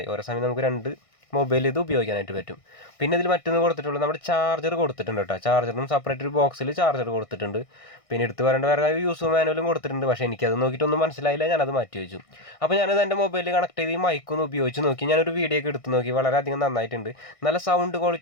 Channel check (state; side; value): late; right; 1.6 ms